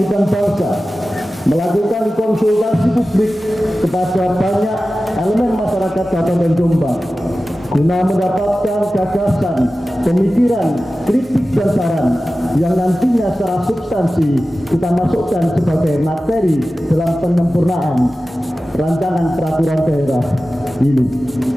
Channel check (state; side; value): normal; both; correlation 0.95